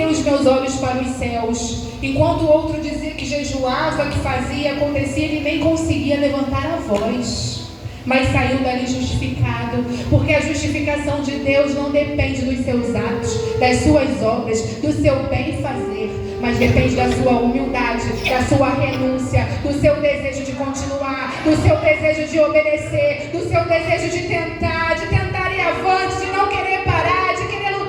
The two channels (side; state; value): both; identical; correlation 1.00